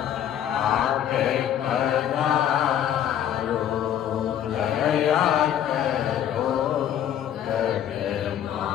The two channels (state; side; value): quieter; right; 10.3 dB